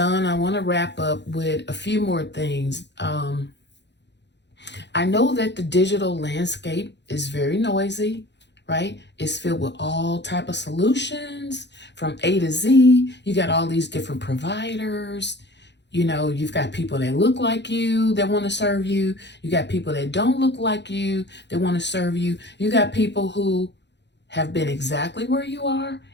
I want to wrap up with a few more things. I know that the digital landscape is very noisy, right? It's filled with all type of solutions from A to Z. You got all these different providers. You've got people that look like you that want to serve you. You got people that don't look like you that want to serve you. You got people who have been exactly where you are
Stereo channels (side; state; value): right; late; 0.51 ms